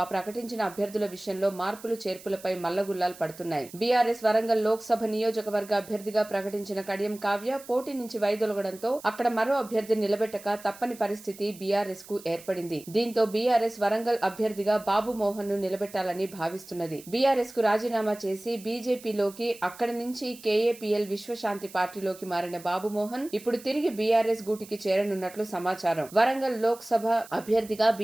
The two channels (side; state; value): right; noise; hiss, 19 dB below the sound